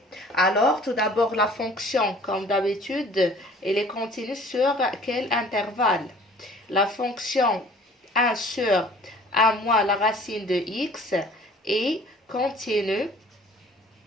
Alors, tout d'abord, la fonction, comme d'habitude, elle est continue sur quel intervalle? La fonction 1 sur 1 moins la racine de x est continue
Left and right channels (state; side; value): normal; both; correlation 0.51